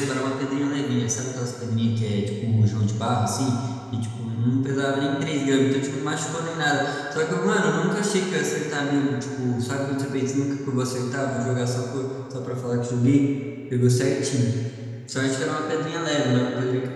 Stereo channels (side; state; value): both; identical; correlation 1.00